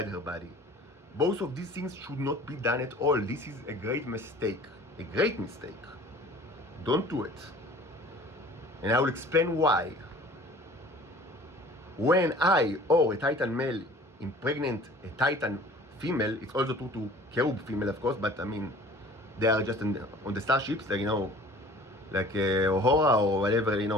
her body. Both of these things should not be done at all. This is a great mistake. A great mistake. Don't do it. And I will explain why. When I or a Titan male impregnate a Titan female, it's also true to cherub female, of course, but they are just on the starships, like Uhura or whatever,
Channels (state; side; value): normal; both; correlation 0.48